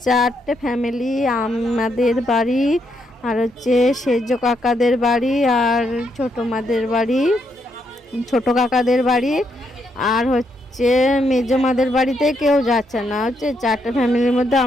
4টে ফ্যামিলি। আমাদের বাড়ি, আর সেজ কাকাদের বাড়ি, আর ছোটো মাদের বাড়ি, ছোটো কাকাদের বাড়ি, আর মেজো মাদের বাড়িতে কেউ যাচ্ছে না। 4টে ফ্যামিলির মধ্যে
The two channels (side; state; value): both; normal; correlation 0.77